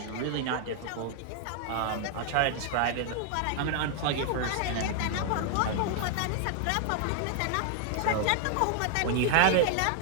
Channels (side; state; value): both; different; correlation 0.00